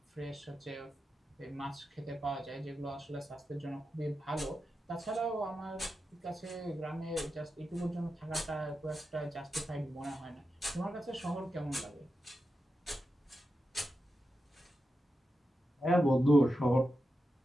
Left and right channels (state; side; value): normal; both; correlation 0.89